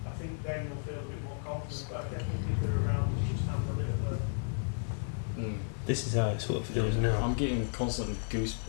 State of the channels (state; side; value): silent; right; digital silence